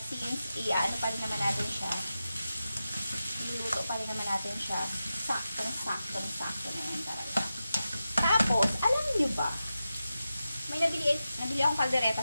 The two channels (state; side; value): inverted; both; correlation -0.92